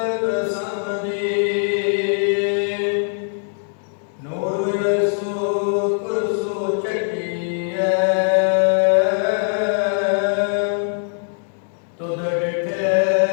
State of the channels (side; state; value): right; silent; 65 dB below the other